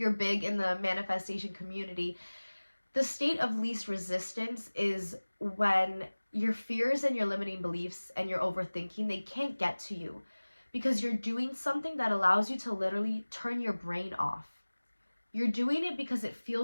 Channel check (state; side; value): inverted; both; correlation -1.00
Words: big in the manifestation community, the state of least resistance is when your fears and your limiting beliefs and your overthinking, they can't get to you because you're doing something that allows you to literally turn your brain off. You're doing it because it